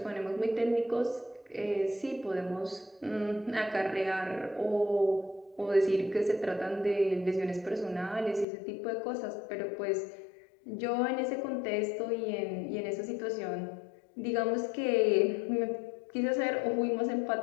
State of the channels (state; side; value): drops out; right; at 8.5 s